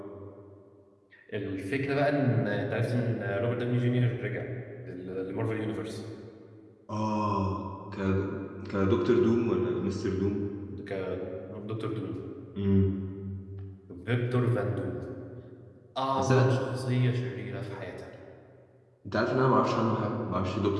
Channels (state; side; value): identical; both; correlation 1.00